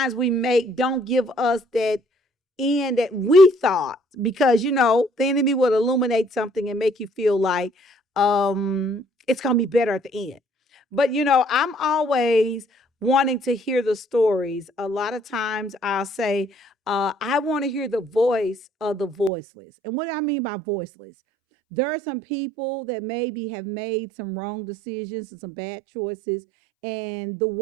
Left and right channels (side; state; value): left; drops out; at 19.3 s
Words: we make don't give us that end that we thought because the enemy would illuminate something and make you feel like it's gonna be better at the end. But I'm always wanting to hear the stories. A lot of times I'll say, I want to hear the voice of the voiceless. And what do I mean by voiceless? There are some people that maybe have made some wrong decisions and some bad choices, and the